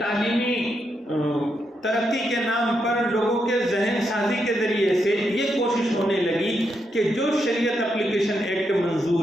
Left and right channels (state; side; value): normal; both; correlation 0.82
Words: ترقی کے نام پر لوگوں کے ذہن سازی کے ذریعے سے یہ کوشش ہونے لگی کہ جو شریعت اپلیکیشن ایکٹ